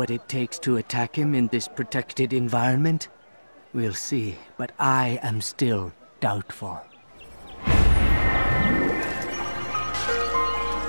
it takes to attack him in this protected environment? We'll see, but I am still doubtful.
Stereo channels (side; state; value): both; inverted; correlation -1.00